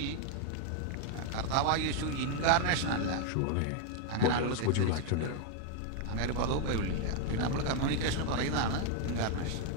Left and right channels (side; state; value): both; different; correlation 0.00